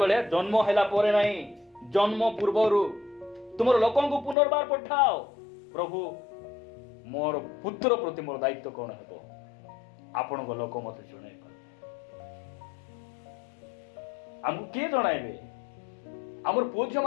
ଜନ୍ମ ହେଲା ପରେ ନାହିଁ, ଜନ୍ମ ପୂର୍ବରୁ ତୁମର ଲୋକଙ୍କୁ ପୁନର୍ବାର ପଠାଅ, ପ୍ରଭୁ ମୋର ପୁତ୍ର ପ୍ରତି ମୋର ଦାୟିତ୍ୱ କ'ଣ ହେବ? ଆପଣଙ୍କ ଲୋକ ମତେ ଜଣାଇବେ। ଆମକୁ କିଏ ଜଣାଇବେ? ଆମର ପୁଅ ଝିଅ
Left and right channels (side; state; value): right; drops out; at 4.4 s